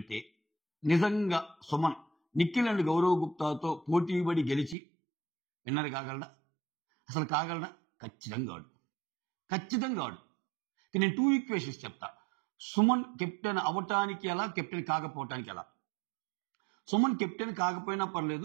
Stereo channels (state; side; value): drops out; left; at 4.8 s